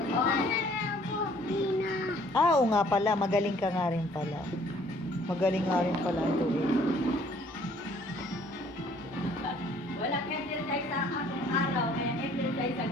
Oo nga pala, magaling ka nga rin pala. Magaling nga rin pala ito eh. Wala exercise sa akong araw, kaya exercise sa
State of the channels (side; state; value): both; normal; correlation 0.59